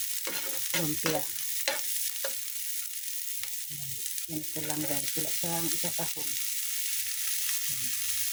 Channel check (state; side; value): identical; both; correlation 1.00